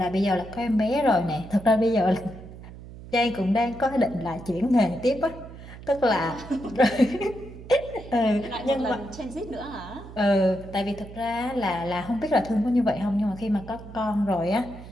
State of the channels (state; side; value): noise; right; hum, 15 dB below the sound